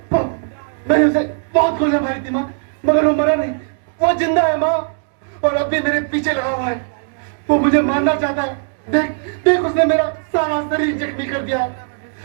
मैंने उसे बहुत गोलियां मारी थी माँ, मगर वो मरा नहीं, वो जिंदा है माँ और अब भी मेरे पीछे लगा हुआ है। वो मुझे मारना चाहता है। देख उसने मेरा सारा शरीर जख्मी कर दिया है।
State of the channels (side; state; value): left; silent; digital silence